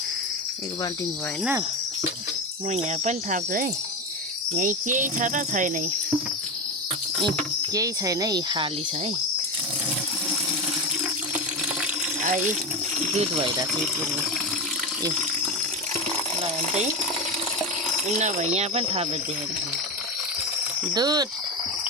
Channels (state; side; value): normal; both; correlation 0.19